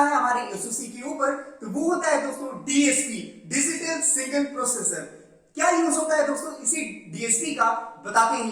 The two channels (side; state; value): both; identical; correlation 1.00